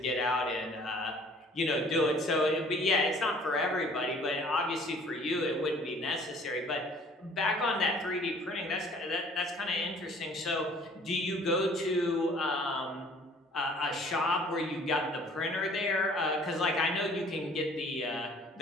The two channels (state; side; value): normal; both; correlation 0.54